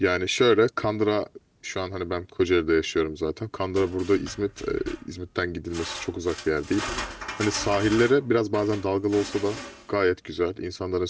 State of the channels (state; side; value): identical; both; correlation 1.00